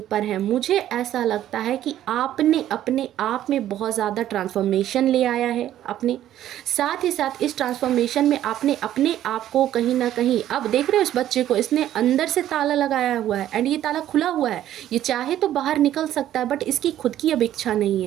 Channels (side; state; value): left; quieter; 12.2 dB